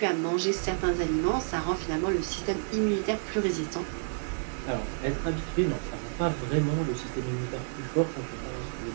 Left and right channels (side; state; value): left; silent; 57 dB below the other